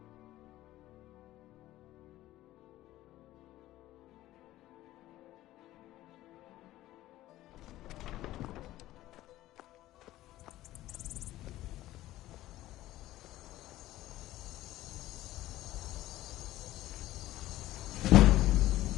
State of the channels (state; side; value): quieter; right; 15.4 dB